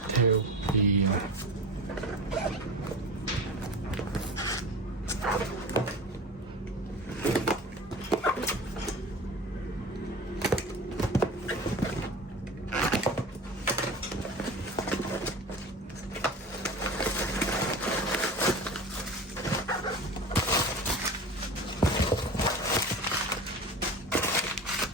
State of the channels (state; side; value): normal; both; correlation 0.33